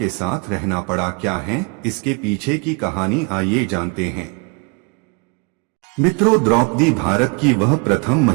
साथ रहना पड़ा? क्या है इसके पीछे की कहानी, आइए जानते हैं। मित्रों, द्रौपदी भारत की वह प्रथम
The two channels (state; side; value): quieter; left; 32.5 dB